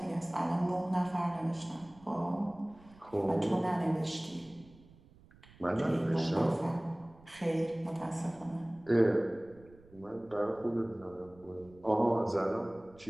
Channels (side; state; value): right; noise; rumble, 25 dB below the sound